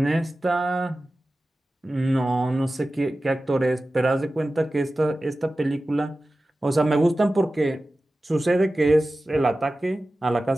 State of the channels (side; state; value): both; normal; correlation 0.95